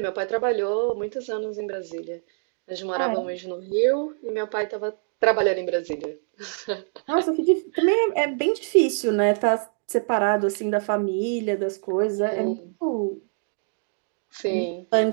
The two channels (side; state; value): left; silent; digital silence